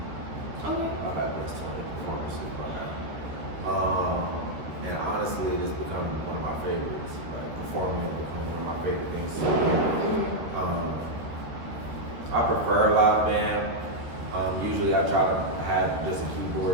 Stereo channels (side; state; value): left; late; 13 ms